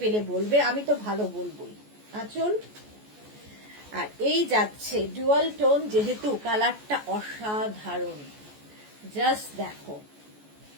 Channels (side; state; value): left; late; 14 ms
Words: বলবে, আমি তো ভালো বলবোই। আঁচল, আর এই যাচ্ছে ডুয়াল টোন, যেহেতু কালারটা অসাধারণ, জাস্ট দেখো।